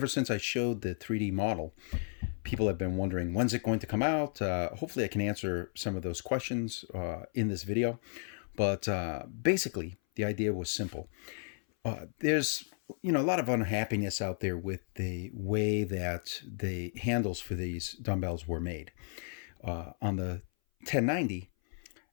since I showed the 3D model, people have been wondering, when's it going to come out? Hopefully I can answer some of those questions in this video. But basically, the idea was simple. There's a lot of unhappiness out there with the way that the handles for these dumbbells were made. On the 1090,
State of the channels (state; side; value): silent; right; 55 dB below the other